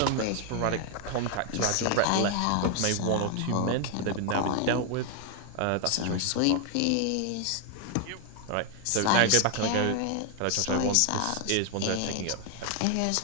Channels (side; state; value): both; different; correlation 0.01